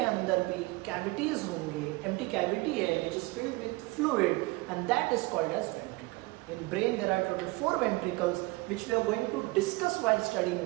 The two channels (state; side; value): quieter; left; 23.2 dB